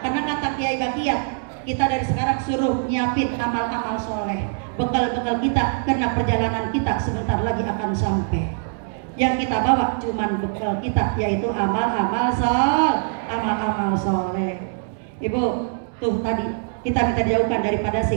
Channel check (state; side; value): silent; left; digital silence